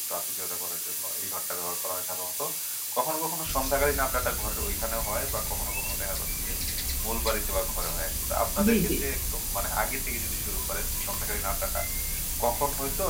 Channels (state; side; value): identical; both; correlation 1.00